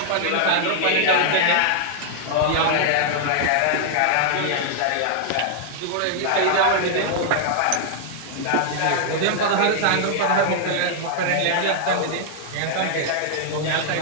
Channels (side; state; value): both; different; correlation 0.00